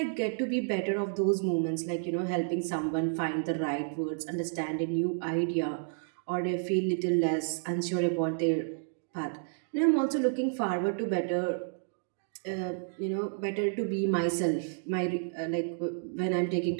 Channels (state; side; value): silent; left; digital silence